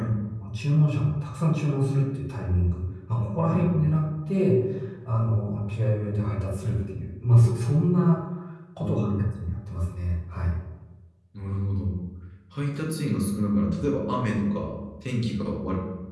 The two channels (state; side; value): identical; both; correlation 1.00